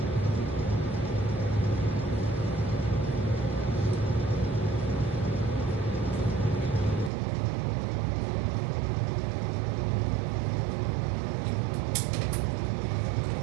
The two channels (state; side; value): drops out; left; at 7.1 s